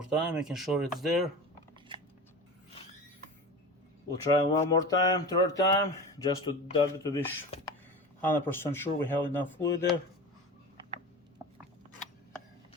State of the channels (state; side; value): normal; both; correlation 0.31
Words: time, making sure it's there. We'll try one more time, third time, just to be 100% sure we have enough fluid there.